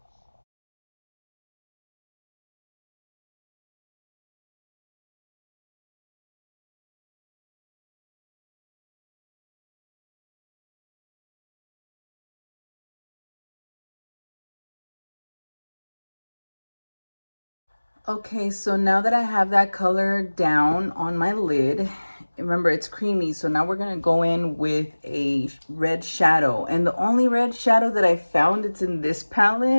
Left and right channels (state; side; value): inverted; both; correlation -1.00